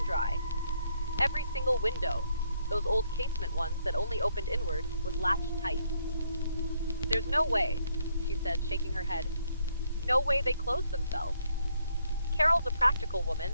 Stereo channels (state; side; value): inverted; both; correlation -0.72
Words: dry. Every single window, those old casement ones that only opened inward, was latched tight. "There's no way," she said, shaking her head. "No way they closed themselves." Carol's a practical woman,